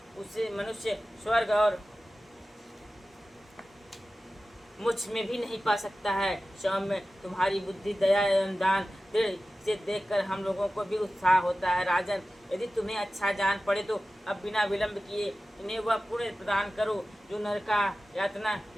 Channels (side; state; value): both; normal; correlation 0.95